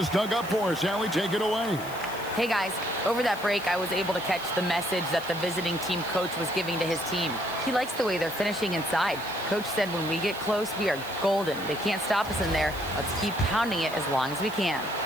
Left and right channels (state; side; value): noise; right; hiss, 16 dB below the sound